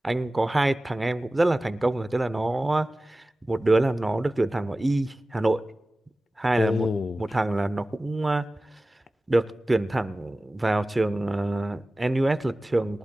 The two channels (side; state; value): both; normal; correlation 0.97